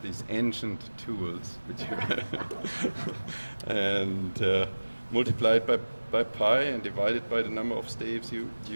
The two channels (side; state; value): both; inverted; correlation -1.00